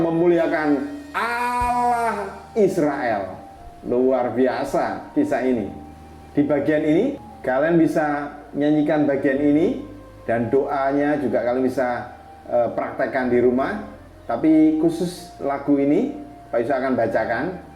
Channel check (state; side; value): identical; both; correlation 1.00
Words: Allah Israel. Luar biasa kisah ini. Di bagian ini kalian bisa nyanyikan bagian ini, dan doanya juga kalian bisa praktekkan di rumah. Tapi khusus lagu ini Pak Yusak akan bacakan.